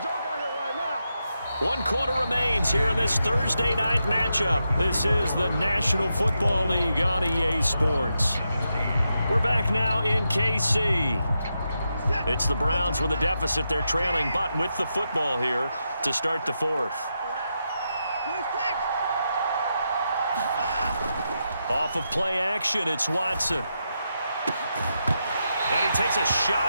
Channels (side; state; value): both; inverted; correlation -0.85